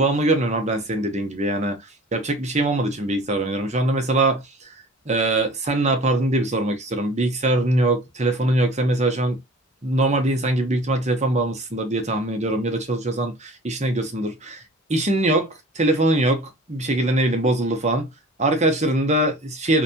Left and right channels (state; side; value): normal; both; correlation 0.44